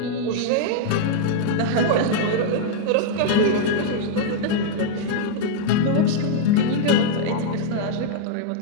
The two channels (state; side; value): different; both; correlation -0.01